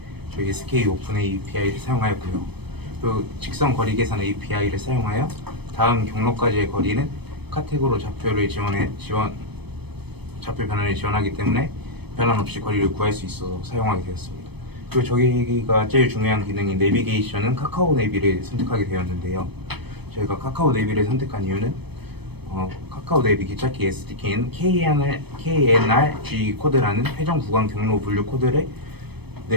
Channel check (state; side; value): late; left; 0.98 ms